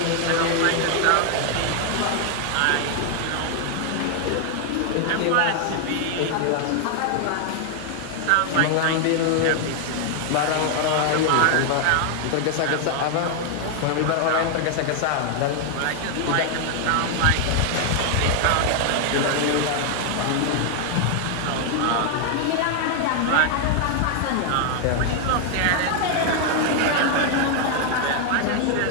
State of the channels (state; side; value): different; both; correlation 0.00